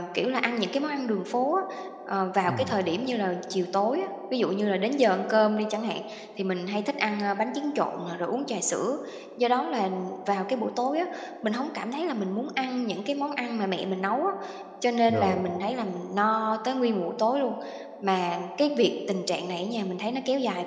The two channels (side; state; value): both; identical; correlation 1.00